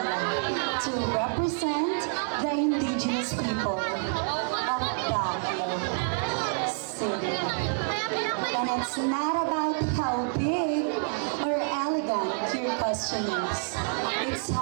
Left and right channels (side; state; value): left; silent; 55 dB below the other